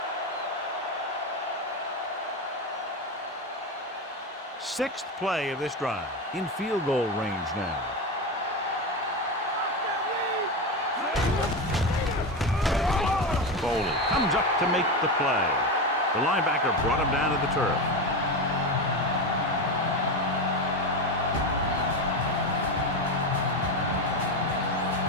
Sixth play of this drive. In field goal range now. Foley comes up to make the play. The linebacker brought him down to the turf.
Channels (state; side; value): normal; both; correlation 0.17